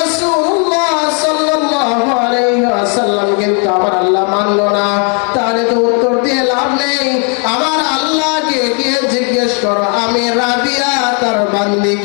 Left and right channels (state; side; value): quieter; right; 37.7 dB